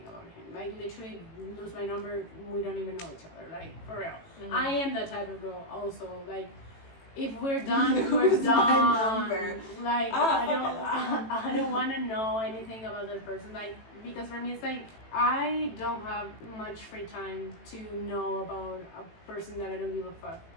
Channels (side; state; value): right; late; 18 ms